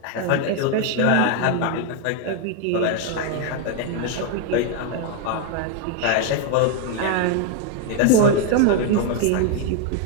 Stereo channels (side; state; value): both; different; correlation 0.01